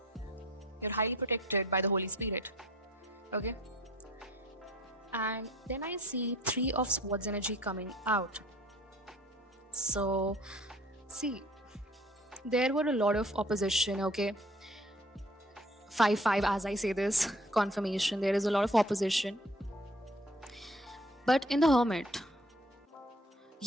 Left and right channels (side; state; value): both; normal; correlation 0.54